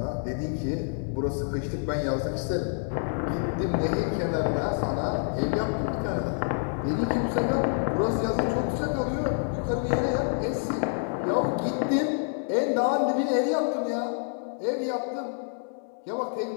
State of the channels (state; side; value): silent; right; digital silence